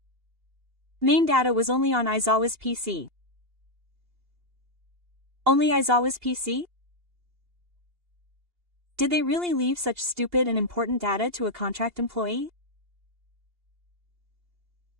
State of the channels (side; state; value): left; late; 2.8 ms